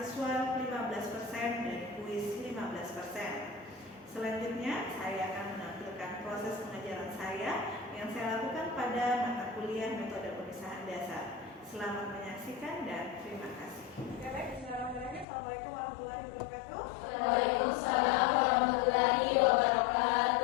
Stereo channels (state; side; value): drops out; right; at 15.2 s